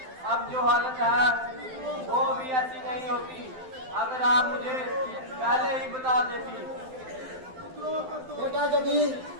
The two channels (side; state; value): left; late; 12 ms